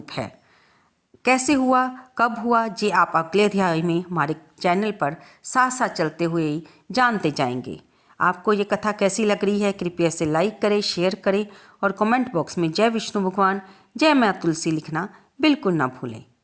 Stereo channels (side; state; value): both; identical; correlation 1.00